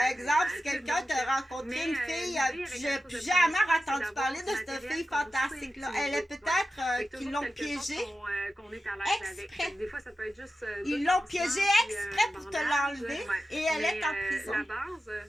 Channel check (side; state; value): both; normal; correlation 0.92